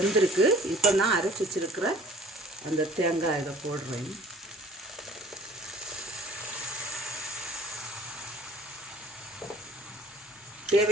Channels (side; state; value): both; normal; correlation 0.52